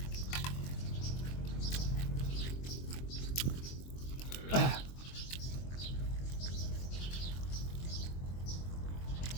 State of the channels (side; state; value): right; late; 23 ms